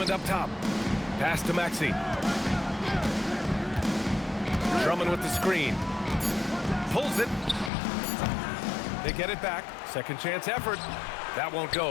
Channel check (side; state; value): right; drops out; at 7.7 s